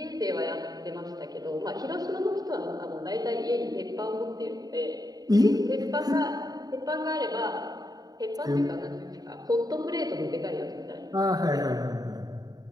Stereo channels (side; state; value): left; late; 0.18 ms